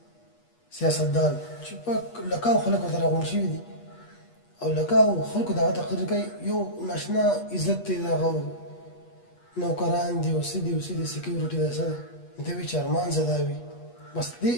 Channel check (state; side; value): late; right; 8.3 ms